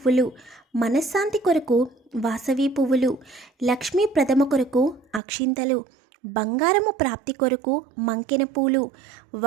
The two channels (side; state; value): left; drops out; at 5.2 s